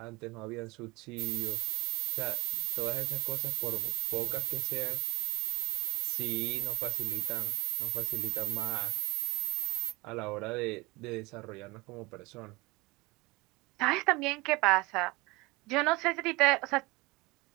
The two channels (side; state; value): left; quieter; 23.8 dB